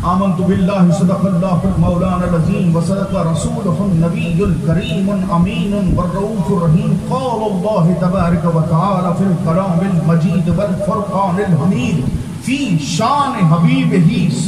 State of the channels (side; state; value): both; identical; correlation 1.00